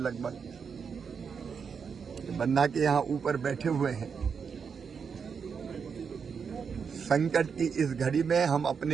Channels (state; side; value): quieter; left; 6.3 dB